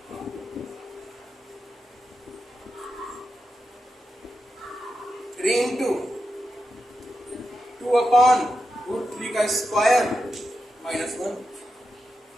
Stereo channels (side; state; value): both; normal; correlation 0.88